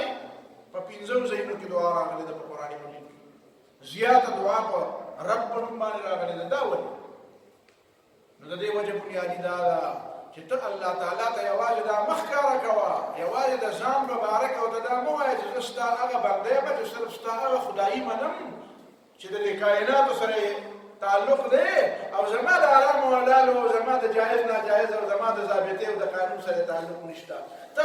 په پنځو ځایونو کې دعا راغلې ده په قرآن مجید کې زیاته دعا په رب په نوم باندې راغلې ده دا ولې نو د دې وجه بنیادي دا ده چې ته الله تعالی ته یوازې دا مخ ښکاره کوه یوازې د ځان مبارک او ته دا مه وایه چې زه ستا هغه بنده یم چې صرف ستا هغه خدایي منم چې د دې کائناتو سره تعلق دی او زما د حرام او حلال او زما د جایز ناجایز او زما د ضابطې او د قانون سره تعلق نشته ته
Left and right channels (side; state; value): both; identical; correlation 1.00